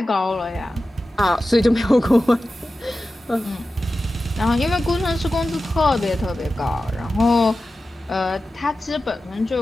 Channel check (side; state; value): both; normal; correlation 0.94